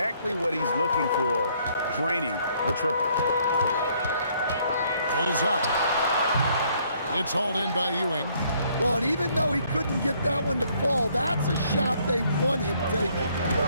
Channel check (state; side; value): inverted; both; correlation -0.66